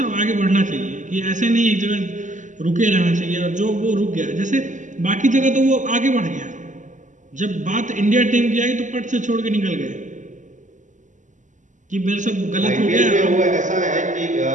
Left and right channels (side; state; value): left; late; 0.36 ms